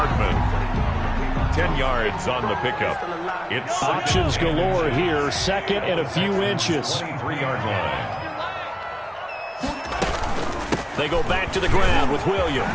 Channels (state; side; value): identical; both; correlation 1.00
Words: 10 yards on the pickup. It's options galore here. Second and a few inches. 23-yard line. They go back to the ground with